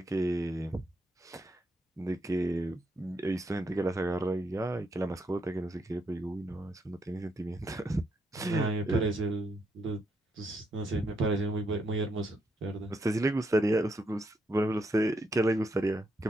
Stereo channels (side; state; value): both; normal; correlation 0.78